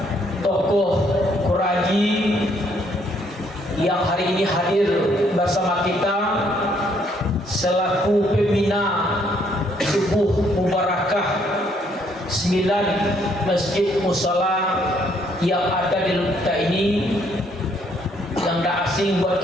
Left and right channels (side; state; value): both; normal; correlation 0.68